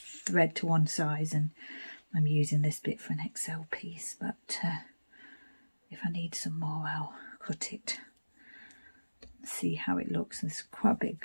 thread to one size, and I'm using this bit for an XL piece, but if I need some more I'll cut it, see how it looks. There's quite a bit of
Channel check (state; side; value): inverted; both; correlation -1.00